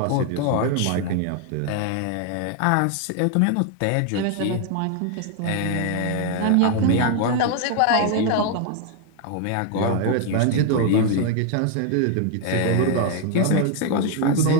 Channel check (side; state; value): both; different; correlation 0.00